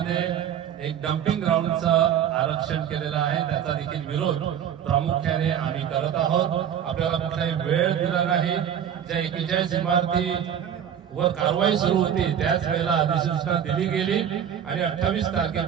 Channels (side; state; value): left; quieter; 9.1 dB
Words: एक डम्पिंग ग्राउंडचं आरक्षण केलेलं आहे, त्याचा देखील विरोध प्रामुख्याने आम्ही करत आहोत। आपल्याला कुठलाही वेळ दिला नाही। ज्या 41 इमारती वर कारवाई सुरू होती त्याच वेळेला अधिसूचना दिली गेली आणि 28